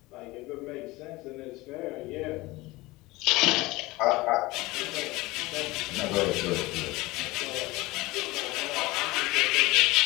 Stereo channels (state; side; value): quieter; right; 20.8 dB